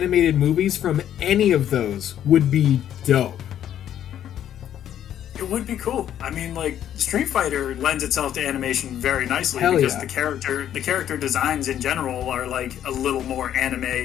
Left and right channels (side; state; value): right; quieter; 10.6 dB